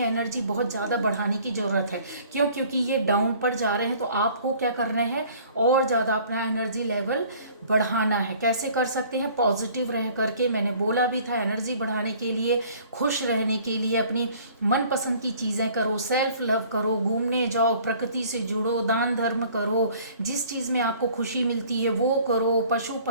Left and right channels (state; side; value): inverted; both; correlation -0.53